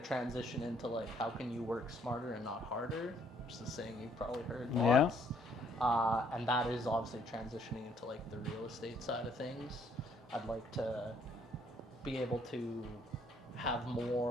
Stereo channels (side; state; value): both; normal; correlation 0.66